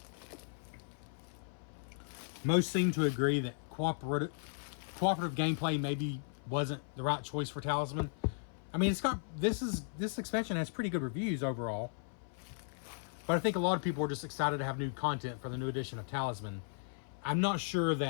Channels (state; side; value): silent; right; 54 dB below the other